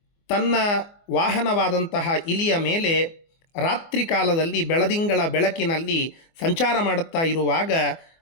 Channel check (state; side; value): late; right; 24 ms